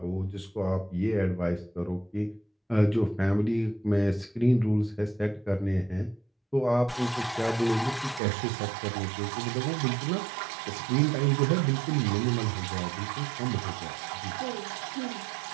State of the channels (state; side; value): drops out; left; at 8.2 s